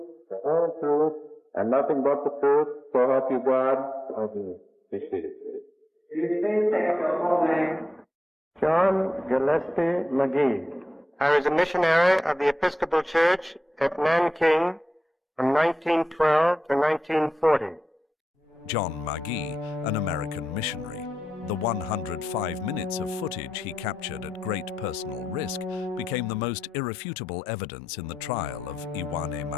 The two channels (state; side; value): normal; both; correlation 0.90